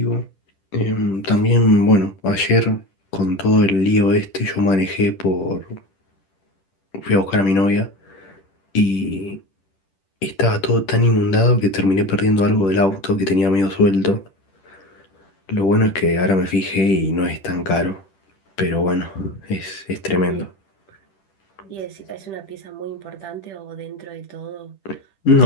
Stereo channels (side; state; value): right; late; 10 ms